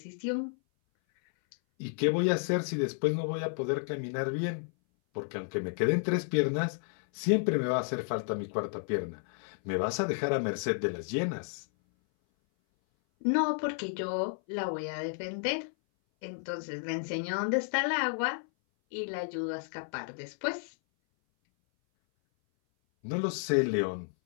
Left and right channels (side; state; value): right; silent; 57 dB below the other